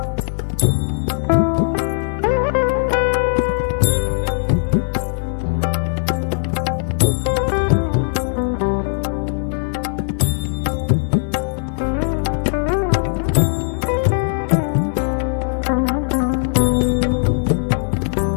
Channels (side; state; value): right; silent; digital silence